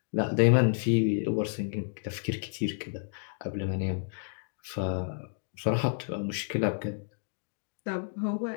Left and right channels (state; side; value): silent; right; digital silence